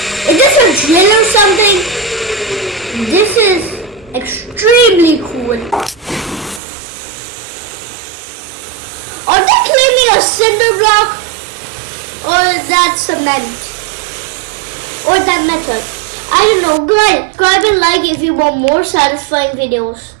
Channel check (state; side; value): drops out; left; at 6.6 s